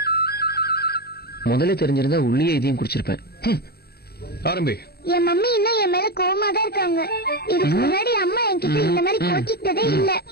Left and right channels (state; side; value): late; right; 0.46 ms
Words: முதல்ல தெரிஞ்சிருந்தா உள்ளே இதையும் குடிச்சிருப்பேன். ஆரம்பி. என் மம்மி இன்னும் என் மேல கோவமா தான் இருக்காங்க. இதுக்கு முன்னாடி அம்மா என்கிட்ட இந்த மாதிரி கோச்சிக்கிட்டதே இல்ல.